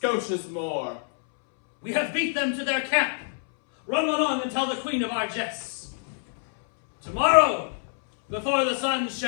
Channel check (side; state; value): right; silent; 61 dB below the other